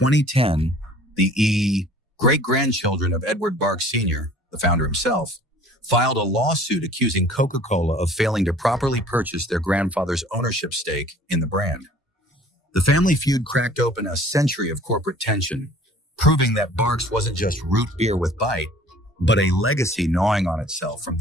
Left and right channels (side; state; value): both; normal; correlation 0.51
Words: the great-grandchildren of Edward Barks Sr., the founder himself, filed a lawsuit accusing Coca-Cola of failing to properly purchase their grandfather's ownership stake in the brand. The family feud cracked open a century of corporate tension, proving that Barks wasn't just root beer with bite, but a legacy gnawing on itself from